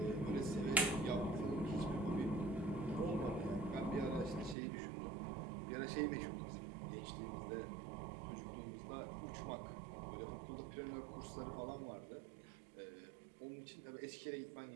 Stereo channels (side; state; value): left; drops out; at 4.5 s